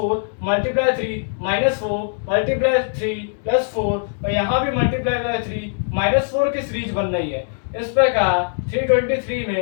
multiply 3 minus 4 multiply 3 plus 4 और यहाँ भी मल्टीप्लाई बाय 3 माइनस 4 की सीरीज बन रही है। इस प्रकार 323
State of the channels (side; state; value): right; silent; 65 dB below the other